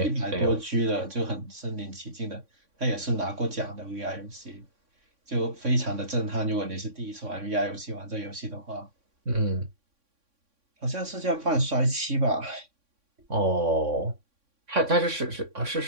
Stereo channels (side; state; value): left; late; 3.6 ms